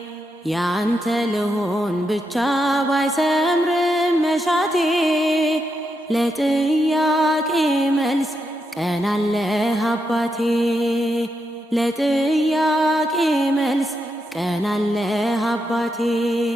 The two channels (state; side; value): normal; both; correlation 0.83